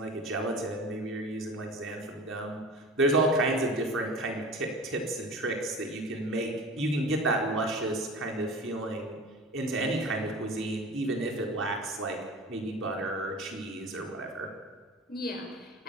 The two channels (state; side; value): normal; both; correlation 0.37